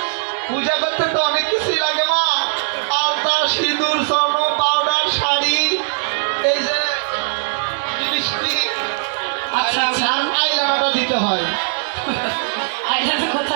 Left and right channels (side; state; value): left; silent; digital silence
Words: পূজা করতে তো অনেক কিছুই লাগে মা। আলতা, সিঁদুর, স্বর্ণ, পাউডার, শাড়ি, এই যে লিপস্টিক, আচ্ছা আচ্ছা আর আইলাইনারও দিতে হয়। আইলাটা